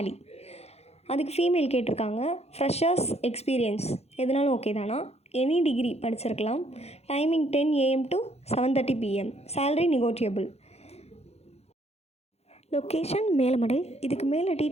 அதுக்கு ஃபீமேல் கேட்டிருக்காங்க. ஃப்ரெஷர்ஸ் எக்ஸ்பீரியன்ஸ் எதுனாலும் ஓகே தானா? எனி டிகிரி படிச்சிருக்கலாம். Timing 10 AM to 7:30 PM, salary negotiable, location Melamadai. இதுக்கு மேலே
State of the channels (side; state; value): right; late; 0.30 ms